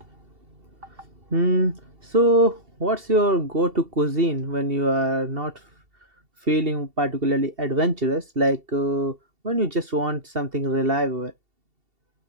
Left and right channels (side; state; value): left; late; 2.7 ms